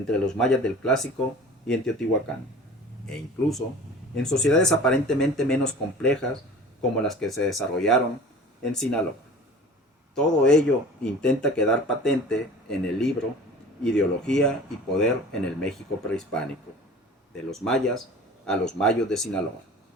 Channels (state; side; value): normal; both; correlation 0.41